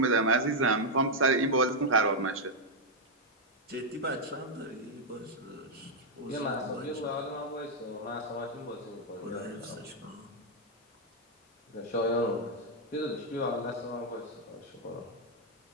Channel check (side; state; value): both; normal; correlation -0.02